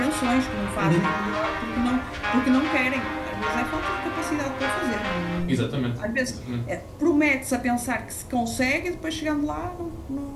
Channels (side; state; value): both; identical; correlation 1.00